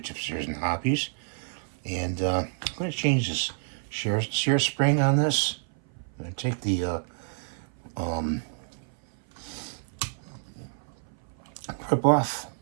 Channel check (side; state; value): left; silent; 56 dB below the other